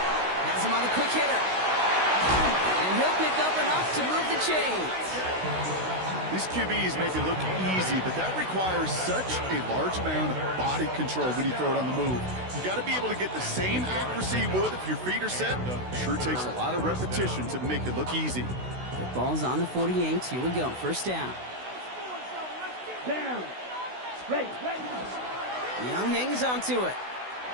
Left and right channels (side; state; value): left; late; 16 ms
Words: Has him on the quick hitter. And he'll pick up enough to move the chains. These QBs make it look easy, but that requires such a large amount of body control when you throw it on the move. You got to be able to get the same accuracy you would if your feet are set. Sure takes a lot of repetition to make it look easy. The ball's on the 48. Here we go. 1st down. Down. Ready, ready. Young hangs onto it.